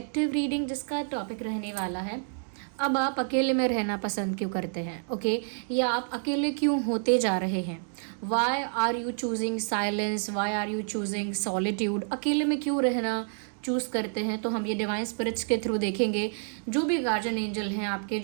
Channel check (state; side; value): silent; left; digital silence